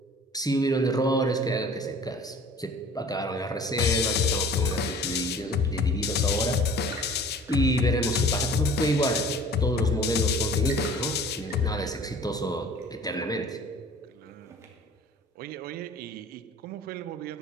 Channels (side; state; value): both; normal; correlation 0.47